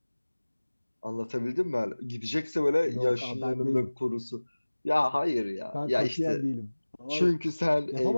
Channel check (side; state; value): both; inverted; correlation -1.00